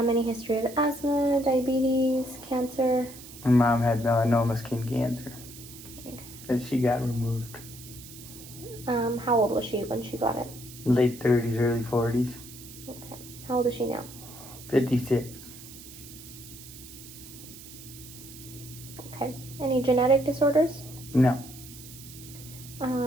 history of asthma, diabetes, cancer? My mom had melanoma skin cancer. Okay. That she got removed. How old was she when she got it? Late 30s, early 40s. Okay. How old is she now? 56. Okay. Any genetic disorders? No.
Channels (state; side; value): noise; right; hiss, 16 dB below the sound